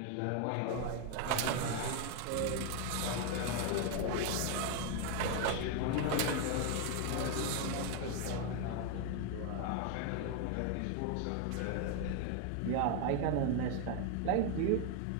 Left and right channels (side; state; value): both; different; correlation 0.01